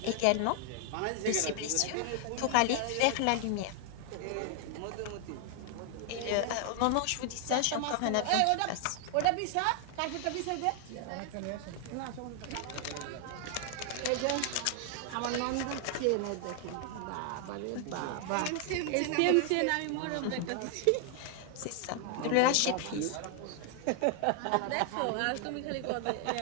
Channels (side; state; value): both; different; correlation 0.00